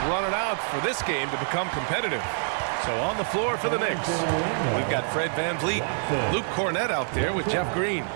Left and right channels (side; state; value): left; silent; 61 dB below the other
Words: running out for this game to become competitive. So on the floor for the Knicks, we've got Fred VanVleet, Luke Kornet out there with Jeff Green.